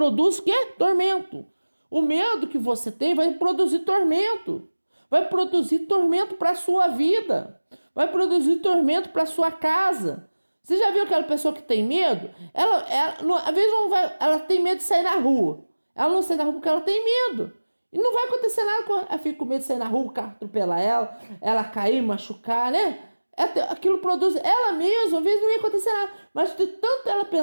o quê? Tormento. O medo que você tem vai produzir tormento. Vai produzir tormento para a sua vida. Vai produzir tormento para a sua casa. Você já viu aquela pessoa que tem medo? Às vezes ela tem medo de sair na rua. Ela não sai na rua porque ela tem medo. E não vai acontecer nada com ela. Ela fica com medo de sair na rua, o carro atropelar ela cair, machucar, né? Aquilo produz ela mesma, às vezes não ia acontecer nada. Mas de tanto ela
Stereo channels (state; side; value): inverted; both; correlation -1.00